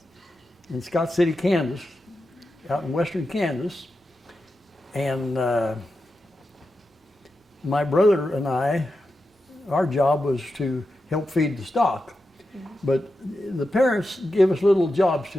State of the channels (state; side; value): normal; both; correlation 0.90